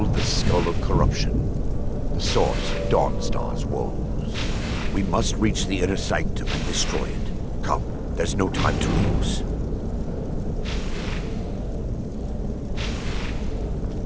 the skull of corruption. The source of Dawnstar's woes. We must reach the inner sanctum and destroy it. Come, there's no time to lose.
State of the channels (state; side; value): identical; both; correlation 1.00